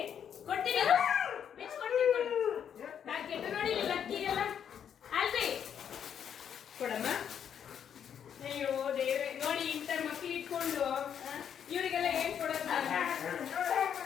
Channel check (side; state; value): right; quieter; 8.5 dB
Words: ಕೊಡ್ತೀನಿ ಬಿಚ್ಕೊಡ್ತೀನಿ ಕೊಡಿ ಪ್ಯಾಕೆಟ್ ನೋಡಿ ಲಕ್ಕಿ ಎಲ್ಲ ಅಲ್ರಿ ಕೊಡಮ್ಮ ಅಯ್ಯೋ ದೇವ್ರೆ ನೋಡಿ ಇಂಥ ಮಕ್ಳು ಇಟ್ಕೊಂಡು ಇವರಿಗೆಲ್ಲ ಏನ್ ಕೊಡಲ್ಲ